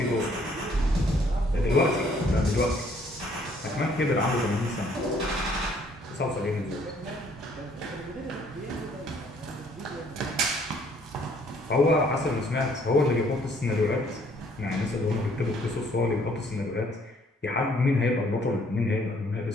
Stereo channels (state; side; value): normal; both; correlation 0.63